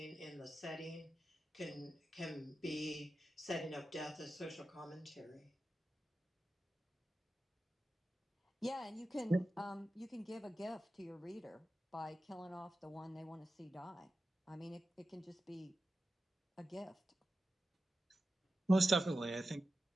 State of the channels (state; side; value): normal; both; correlation 0.92